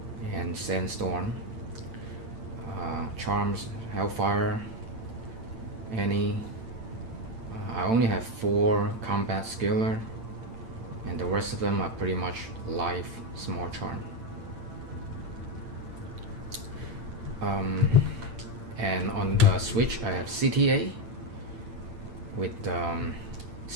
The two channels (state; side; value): late; left; 8.8 ms